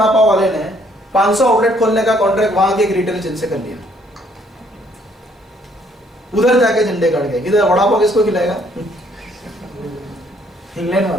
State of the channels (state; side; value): normal; both; correlation 0.65